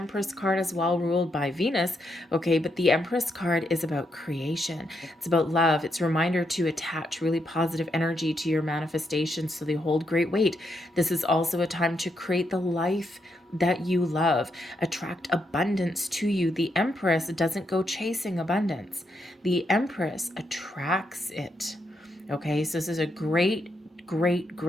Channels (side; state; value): both; normal; correlation 0.80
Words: card as well, ruled by Venus. Okay, but the Empress card is about creation, it's about love. It's a reminder to attach really positive energy to your manifestations so they hold great weight. This is also a time to create the life that you love, attract abundance to you. The Empress doesn't go chasing abundance, the Empress attracts it. Okay, so this is a great